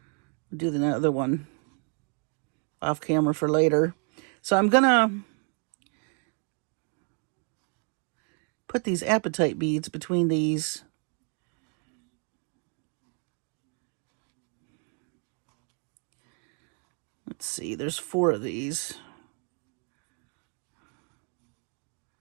I'll do the other one off camera for later. So I'm gonna put these appetite beads between these. Let's see, there's 4 of these.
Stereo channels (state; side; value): quieter; left; 38.3 dB